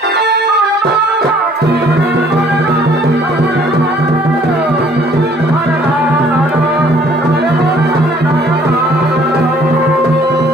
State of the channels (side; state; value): both; normal; correlation 0.58